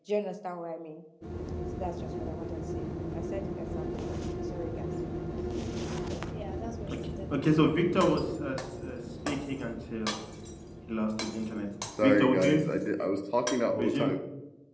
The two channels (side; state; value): both; identical; correlation 1.00